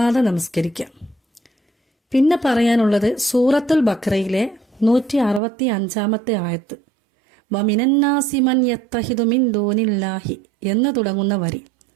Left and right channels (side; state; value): left; drops out; at 5.4 s